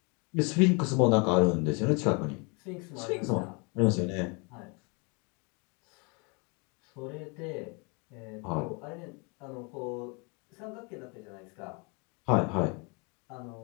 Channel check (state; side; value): quieter; right; 32.1 dB